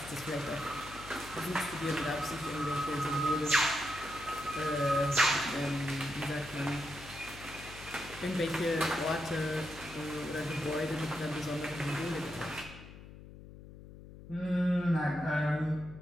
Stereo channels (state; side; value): noise; left; hum, 16 dB below the sound